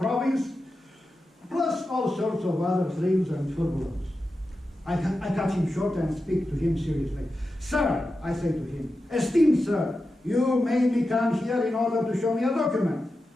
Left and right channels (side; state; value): both; normal; correlation 0.91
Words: plus all sorts of other thrills and turbulence. I cut him short and speak to him seriously. Sir, I say to him, esteemed sir, you made me come here in order to show me a document.